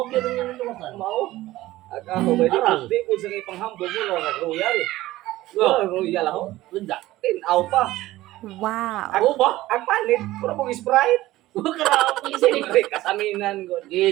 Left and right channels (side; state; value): left; quieter; 16.6 dB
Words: gyud nga nalawasan. Mao. Ako ba Arang. di ko sa kay panghambog mo na royal. Oh. Royal ako. Ganda. Tinaw pa. Wow! Ako ba? Ang panit, puro mong Sprite. Grabe sini. Siyempre, kasaminan ko.